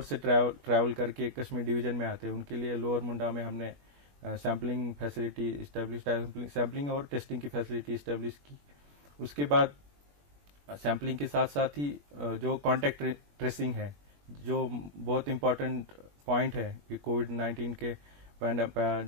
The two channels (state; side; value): late; left; 21 ms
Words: से ट्रैवल करके कश्मीर डिवीजन में आते हैं उनके लिए लोअर मुंडा में हमने सैम्पलिंग फैसिलिटी इस्टेब्लिश, सैम्पलिंग और टेस्टिंग की फैसिलिटी इस्टेब्लिश की। उसके बाद सैम्पलिंग के साथ साथ ही जो कॉन्टैक्ट ट्रेसिंग है, जो बहुत इम्पोर्टेंट पॉइंट है कि कोविड-19 के